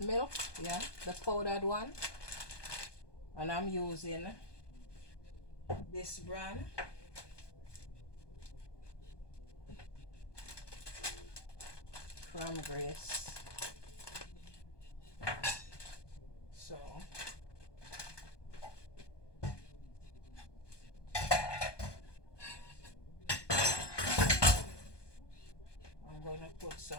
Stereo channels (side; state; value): right; late; 1.2 ms